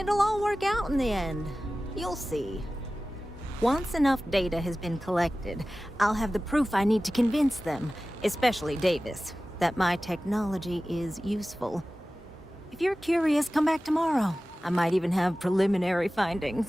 all work out in the end. You'll see. Once enough data has been collected, I'll have the proof I need to convince them, especially Davis, that my technology is useful. If you're curious, come back tomorrow. I might even have preliminary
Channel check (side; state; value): both; normal; correlation 0.96